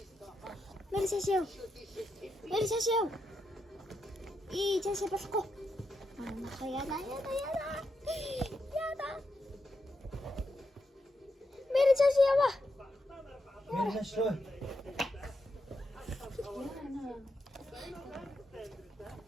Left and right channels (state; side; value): normal; both; correlation 0.84